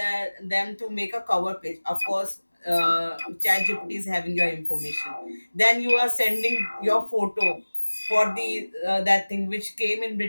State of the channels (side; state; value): both; inverted; correlation -1.00